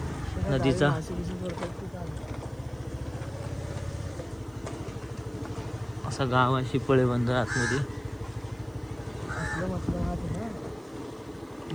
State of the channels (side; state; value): right; noise; hiss, 30 dB below the sound